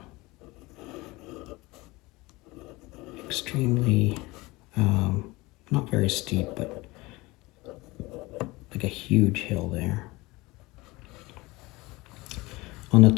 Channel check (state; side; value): quieter; right; 22.0 dB